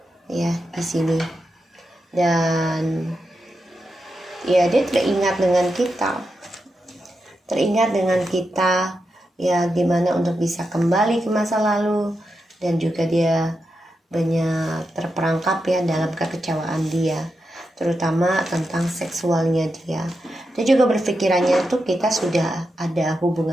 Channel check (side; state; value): both; normal; correlation 0.87